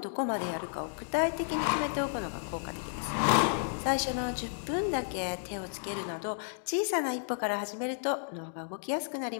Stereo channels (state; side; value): silent; right; digital silence